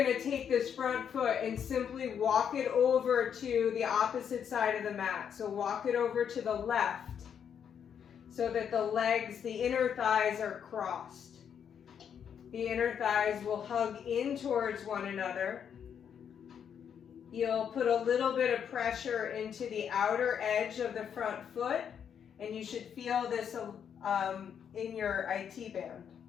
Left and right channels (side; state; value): right; quieter; 8.0 dB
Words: to take this front foot and simply walk it over to the opposite side of the mat. So walk it over to the left so that the legs, the inner thighs are crossed. The inner thighs will hug in towards one another. You'll put a little bit of pressure into the outer edge of the front foot, and you should feel this in your IT band,